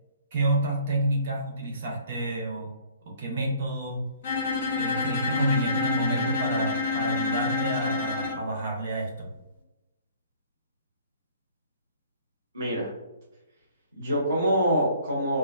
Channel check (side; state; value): both; inverted; correlation -0.53